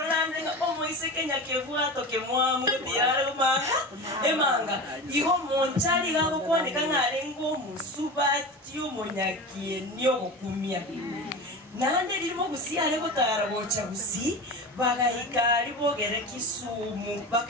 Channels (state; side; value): normal; both; correlation 0.28